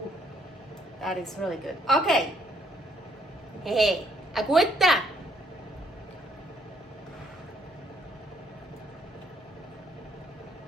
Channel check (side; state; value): both; normal; correlation 0.68